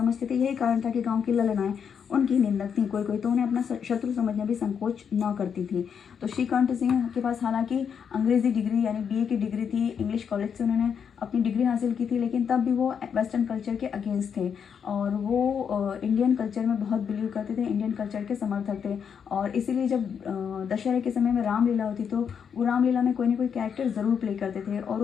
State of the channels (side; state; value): right; quieter; 7.2 dB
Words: थे। यही कारण था कि गाँव की ललनाएं उनकी निंदक थी। कोई तो उन्हें अपना शत्रु समझने भी संकोच न करती थी। तो श्रीकंठ सिंह के पास हालांकि अंग्रेजी डिग्री यानी बीए की डिग्री थी, इंग्लिश कॉलेज से उन्होंने अपनी डिग्री हासिल की थी, लेकिन तब भी वो वेस्टर्न कल्चर के अगेंस्ट थे और वो इंडियन कल्चर में बहुत बिलीव करते थे, इंडियन कल्चर के समर्थक थे। और इसीलिए जब दशहरे के समय में रामलीला होती तो वो रामलीला में कोई ना कोई कैरेक्टर ज़रूर प्ले करते थे और